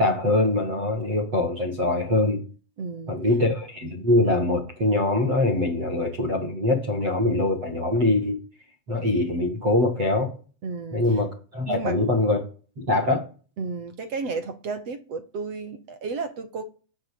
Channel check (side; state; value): left; late; 7.9 ms